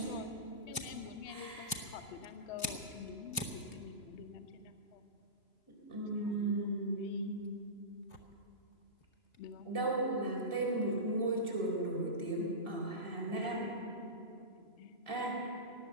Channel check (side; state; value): right; late; 2.9 ms